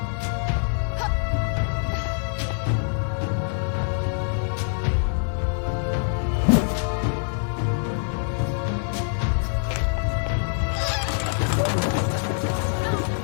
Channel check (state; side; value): silent; right; digital silence